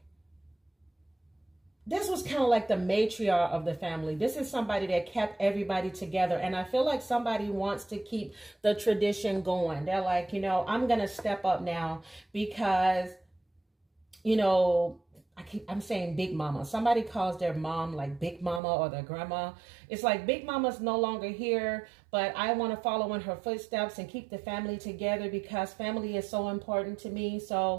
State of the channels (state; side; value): drops out; left; at 18.6 s